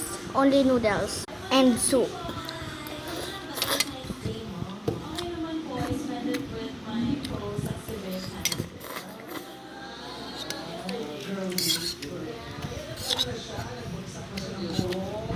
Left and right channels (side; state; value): both; identical; correlation 1.00